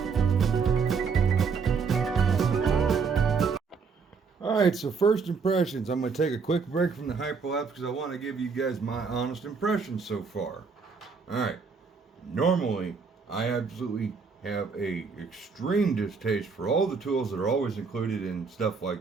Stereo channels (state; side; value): quieter; left; 5.3 dB